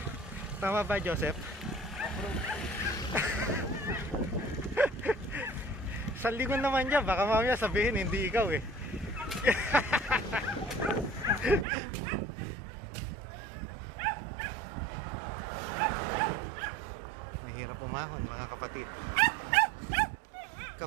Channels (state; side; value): drops out; left; at 11.7 s